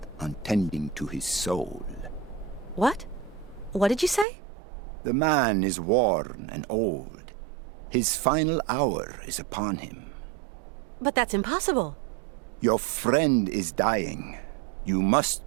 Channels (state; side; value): drops out; left; at 4.2 s